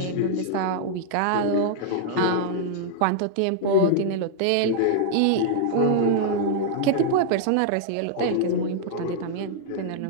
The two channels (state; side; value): different; both; correlation -0.01